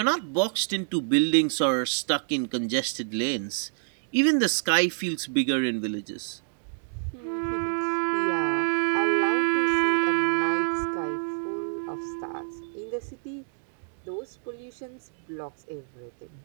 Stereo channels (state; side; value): silent; left; digital silence